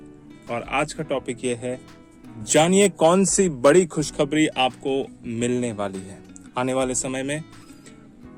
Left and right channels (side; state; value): both; identical; correlation 1.00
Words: और आज का टॉपिक ये है, जानिए कौन सी बड़ी खुशखबरी आपको मिलने वाली है। आने वाले समय में